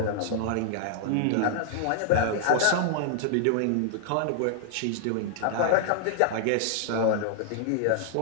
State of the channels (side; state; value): both; different; correlation -0.01